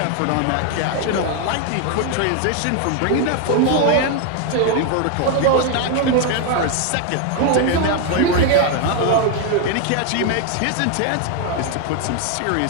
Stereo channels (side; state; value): both; different; correlation 0.01